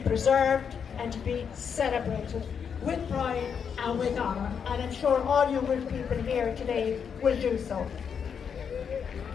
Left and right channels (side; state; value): right; quieter; 7.0 dB